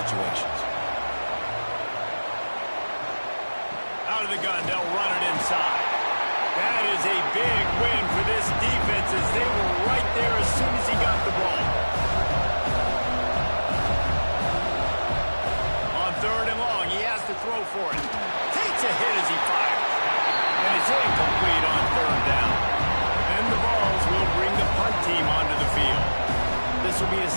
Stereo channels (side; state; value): both; inverted; correlation -1.00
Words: Out of the gun, they'll run it inside. That is a big win for this defense as they were right there as soon as he got the ball. On third and long, he has to throw for it. Takes a hit as he fires. And it's incomplete on third down. And the Vols will bring the punt team onto the field. This will be the